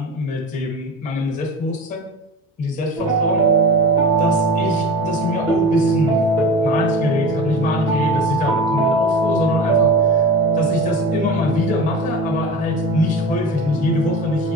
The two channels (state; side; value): normal; both; correlation 0.33